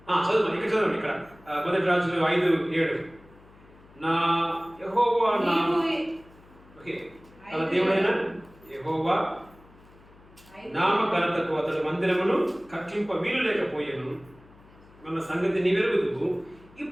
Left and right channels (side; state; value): left; noise; hum, 25 dB below the sound